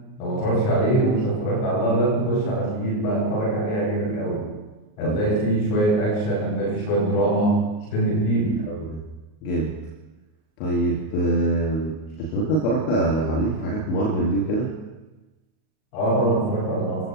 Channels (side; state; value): right; late; 38 ms